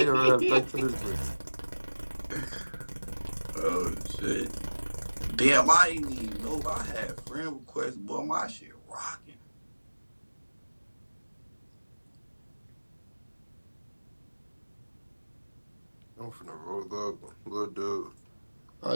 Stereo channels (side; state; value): both; inverted; correlation -1.00